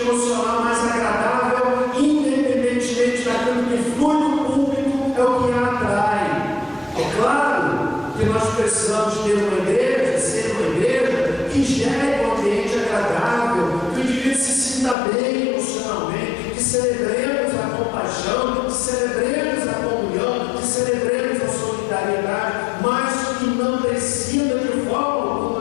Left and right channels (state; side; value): drops out; right; at 15.0 s